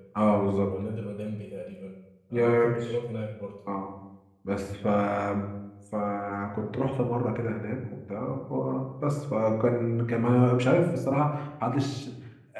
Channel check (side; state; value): both; identical; correlation 1.00